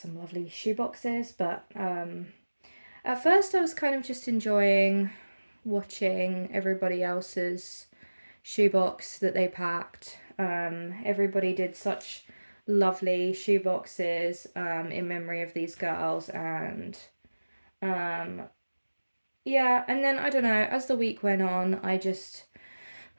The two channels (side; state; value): both; inverted; correlation -1.00